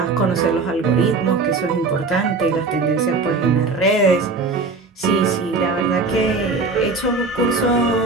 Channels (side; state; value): left; quieter; 3.9 dB